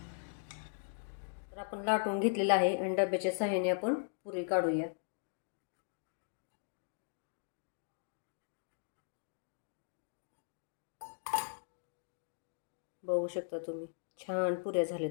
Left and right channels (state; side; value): silent; right; digital silence